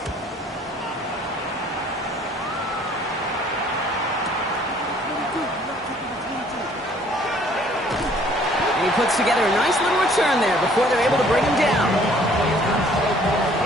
And he puts together a nice little return there before they're able to bring him down.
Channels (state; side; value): normal; both; correlation 0.58